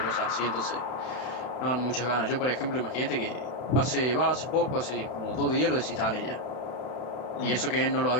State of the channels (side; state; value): right; late; 31 ms